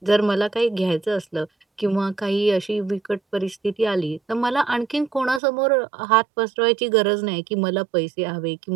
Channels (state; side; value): drops out; left; at 5.4 s